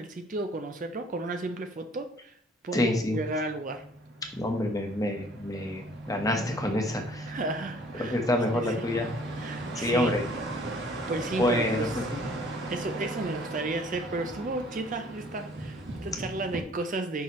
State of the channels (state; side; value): normal; both; correlation 0.56